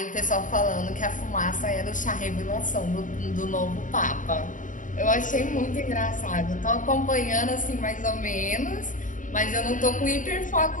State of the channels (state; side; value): late; right; 0.38 ms